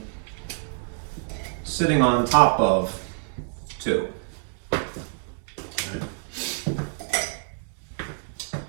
sitting on top of 2. Right?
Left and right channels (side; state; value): left; silent; 60 dB below the other